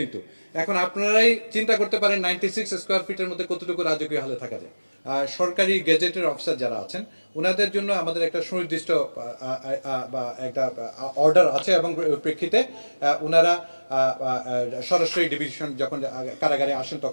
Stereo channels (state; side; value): inverted; both; correlation -1.00